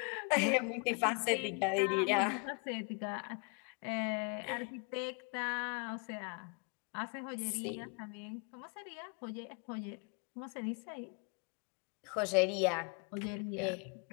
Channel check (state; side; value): quieter; right; 35.3 dB